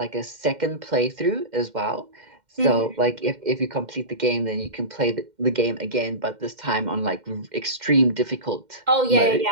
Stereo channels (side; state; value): left; late; 2.1 ms